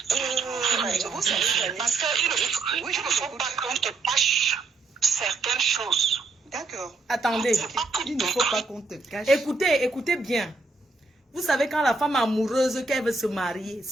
Vous savez, parce qu'il ne faut pas qu'on te cache certaines choses. D'accord. Attendez, Il ne faut pas qu'on te cache. écoutez bien. Vous savez quand la femme amoureuse qu'elle veut se marier,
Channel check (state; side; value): quieter; left; 3.5 dB